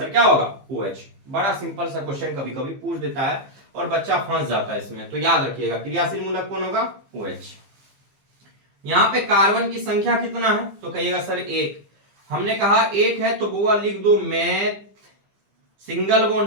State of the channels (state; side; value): late; left; 15 ms